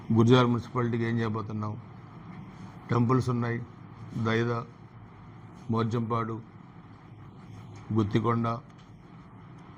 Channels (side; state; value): both; identical; correlation 1.00